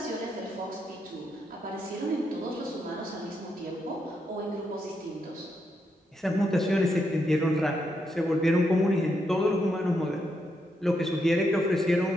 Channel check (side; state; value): both; normal; correlation 0.81